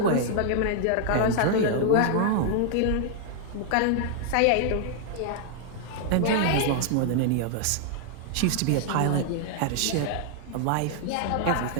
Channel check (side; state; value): both; different; correlation 0.00